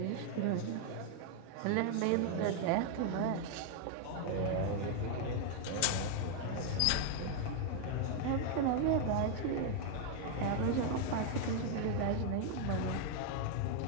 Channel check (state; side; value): different; both; correlation 0.00